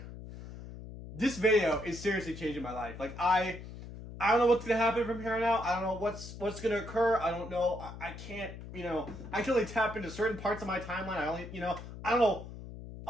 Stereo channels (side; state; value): left; noise; hum, 12 dB below the sound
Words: this video is seriously changing my life. Like I don't know what's gonna happen from here on out. I don't know what's gonna occur. I don't know. I can't, I can only tap into certain parts of my timeline. I don't know.